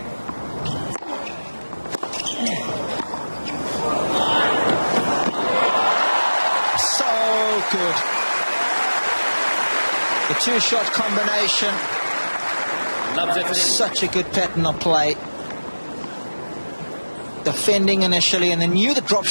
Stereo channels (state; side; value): inverted; both; correlation -1.00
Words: Good. The two-shot combination. Such a good pattern of play. Defending initially, and then knew the drop